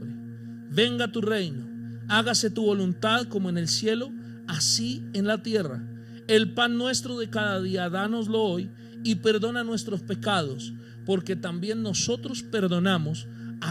venga tu reino, hágase tu voluntad como en el cielo, así en la tierra. El pan nuestro de cada día, dánoslo hoy, y perdona nuestros pecados, porque también nosotros perdonamos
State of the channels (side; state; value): both; identical; correlation 1.00